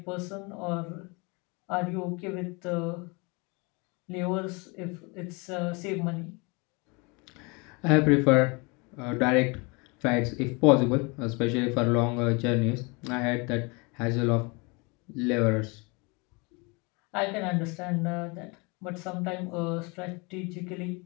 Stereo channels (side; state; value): right; quieter; 29.0 dB